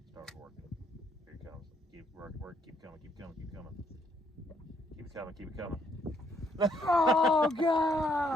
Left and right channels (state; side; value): normal; both; correlation 0.70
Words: Start working. Here it comes. Keep work. Keep coming. Keep coming. Keep coming. Keep it coming. Keep it coming. Oh